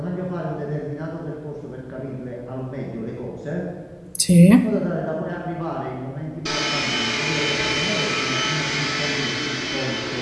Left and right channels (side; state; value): both; identical; correlation 1.00